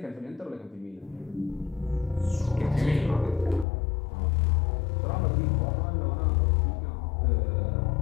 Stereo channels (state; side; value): drops out; right; at 3.7 s